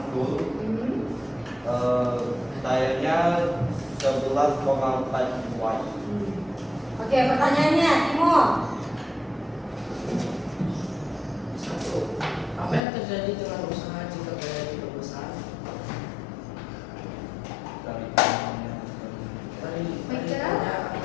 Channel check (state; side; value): drops out; right; at 12.8 s